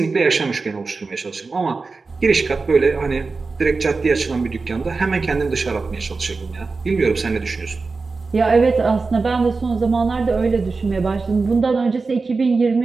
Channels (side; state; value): left; quieter; 4.1 dB